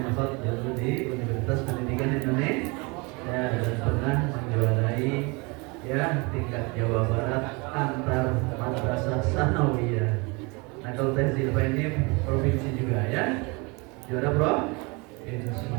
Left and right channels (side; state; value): left; quieter; 28.3 dB